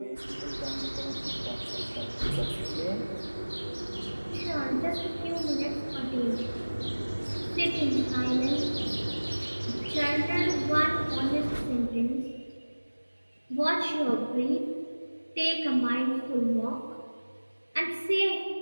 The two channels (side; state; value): both; inverted; correlation -1.00